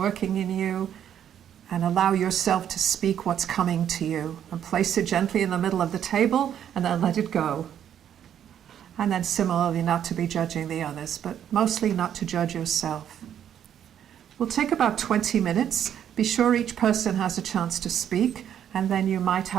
in you and allow yourself to speak what's coming to you and place it gently in the middle of the table and then let it go. And then similarly not to be judging the others, but mostly not to judge yourself. We'll take about 20 minutes. Be sure each person has a chance to speak, and then you might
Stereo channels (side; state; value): left; quieter; 9.6 dB